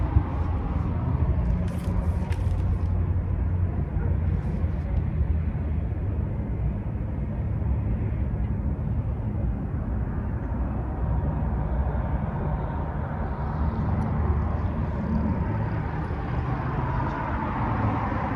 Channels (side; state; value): both; identical; correlation 1.00